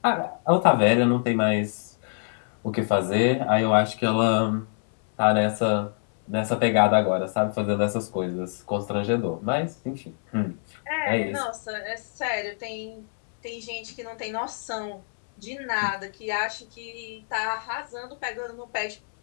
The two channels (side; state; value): right; silent; 61 dB below the other